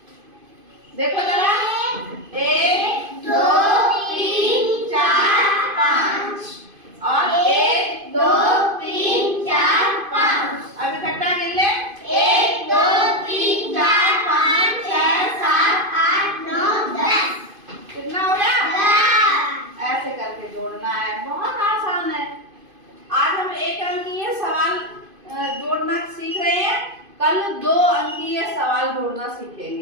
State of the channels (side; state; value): left; late; 2.5 ms